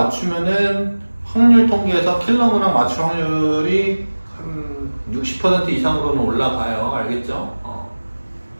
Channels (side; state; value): both; inverted; correlation -1.00